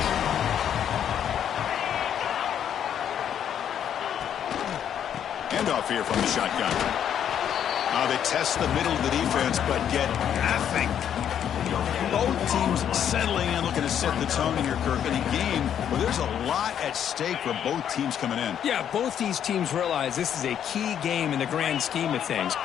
Handoff here from the shotgun. They test the middle of the defense, but get nothing. Both teams settling in, looking to set the tone in here, Kirk, in a game where there's a lot at stake for both teams coming in. Yeah, both these teams realize this is a key game in the grand scheme of things.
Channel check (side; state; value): right; quieter; 9.3 dB